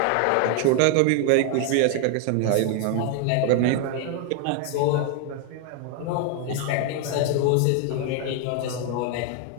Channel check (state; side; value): different; both; correlation 0.00